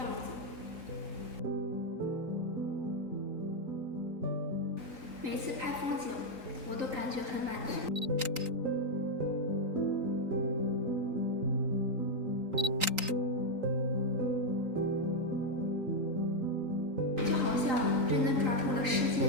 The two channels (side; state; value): left; late; 3.8 ms